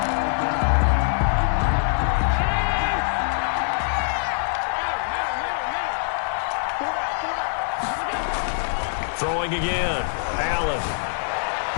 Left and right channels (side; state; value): right; silent; 63 dB below the other